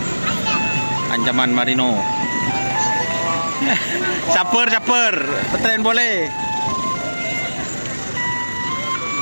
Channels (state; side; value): inverted; both; correlation -1.00